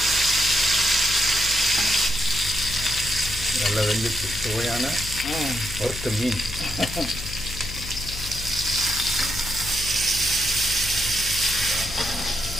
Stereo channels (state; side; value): noise; left; hum, 10 dB below the sound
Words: நல்லா வெந்துச்சு. சுவையான வறுத்த மீன்.